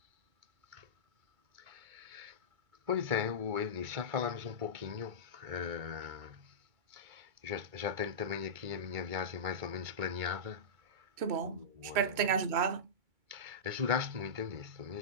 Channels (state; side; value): late; left; 2.3 ms